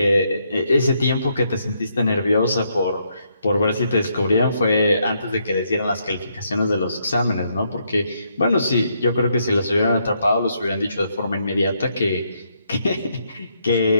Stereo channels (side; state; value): both; inverted; correlation -0.76